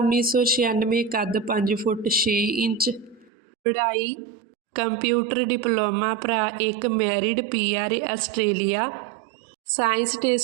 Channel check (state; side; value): drops out; left; at 3.3 s